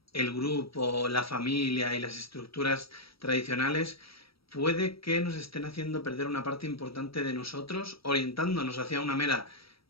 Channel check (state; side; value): late; right; 0.75 ms